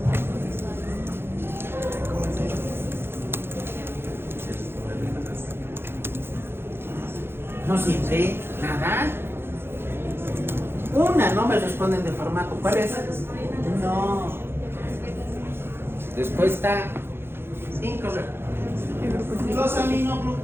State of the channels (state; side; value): late; left; 0.11 ms